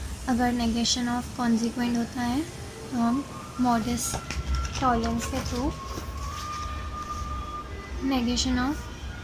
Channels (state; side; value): identical; both; correlation 1.00